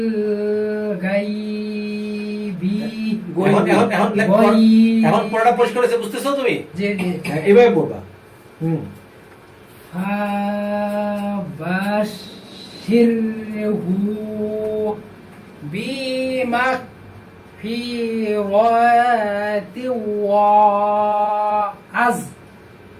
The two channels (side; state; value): both; identical; correlation 1.00